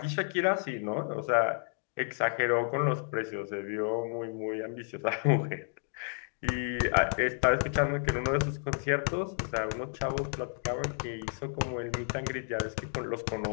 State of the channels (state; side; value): silent; right; 57 dB below the other